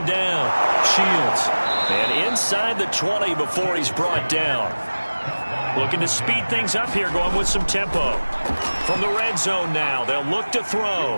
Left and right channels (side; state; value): both; inverted; correlation -1.00